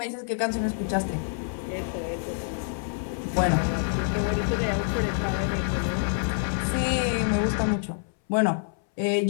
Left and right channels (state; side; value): silent; right; 60 dB below the other